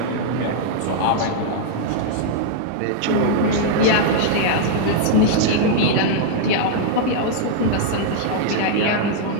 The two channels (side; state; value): both; different; correlation -0.01